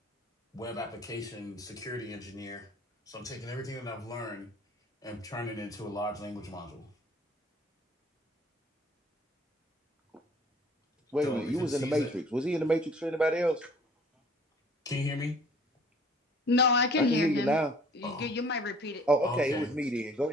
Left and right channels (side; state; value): both; normal; correlation 0.53